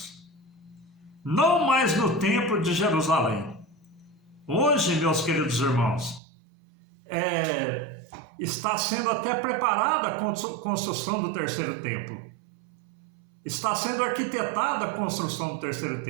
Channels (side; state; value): left; drops out; at 6.2 s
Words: Não mais no templo de Jerusalém. Hoje, meus queridos irmãos, está sendo até preparada a construção do terceiro templo. Está sendo arquitetada a construção do terceiro